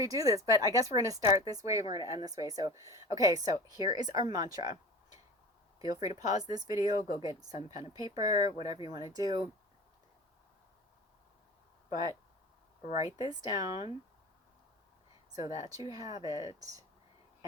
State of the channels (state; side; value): normal; both; correlation 0.35